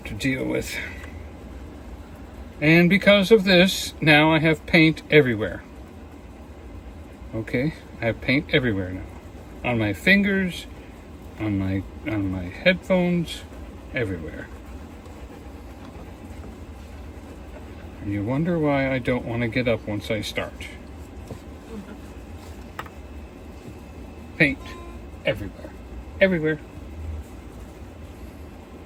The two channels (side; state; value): both; identical; correlation 1.00